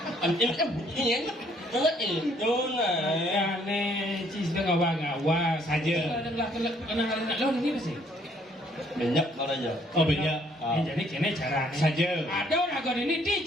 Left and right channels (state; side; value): normal; both; correlation 0.64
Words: Ini kan bunyinya. Itu nah. Aneh, cis dah ngawa saja. Kenang lo ini apa sih? Banyak aja. Oh banyak. Jadi kene cara Saja. Ada orang ini